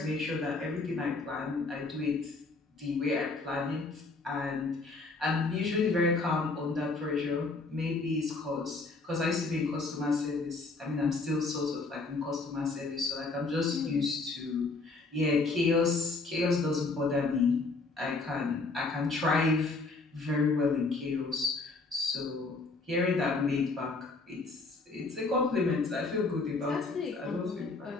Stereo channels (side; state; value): right; quieter; 3.7 dB